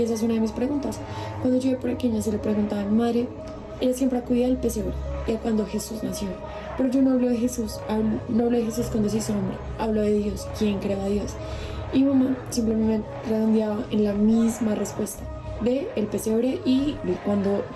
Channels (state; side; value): identical; both; correlation 1.00